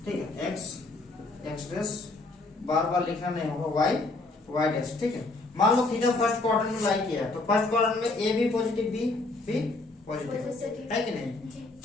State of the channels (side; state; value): right; quieter; 3.3 dB